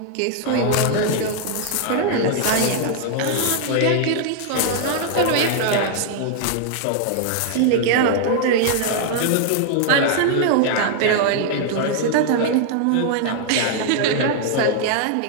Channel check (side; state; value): both; different; correlation 0.00